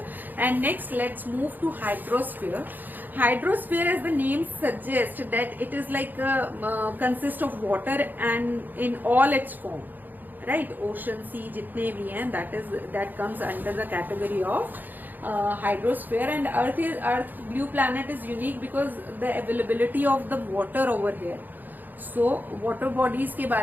And next let's move to hydrosphere. Hydrosphere, as the name suggests, that it is like consists of water and in all its form, right? Ocean, sea, jitne bhi hain, that comes under the category of hydrosphere. And Earth blue planet is unique because the availability of the water over here. So water bodies के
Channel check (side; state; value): left; late; 0.087 ms